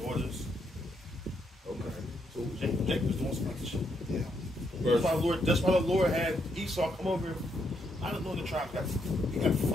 daughters. Okay. So Jacob was doing some other shit. Yeah. That's why the Lord had Esau come over. I don't know the tribe got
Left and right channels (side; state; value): both; normal; correlation 0.77